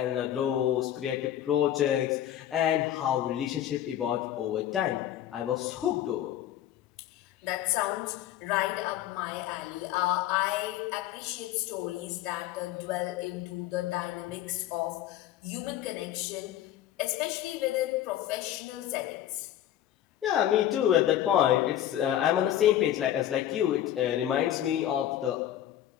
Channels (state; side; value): quieter; right; 11.9 dB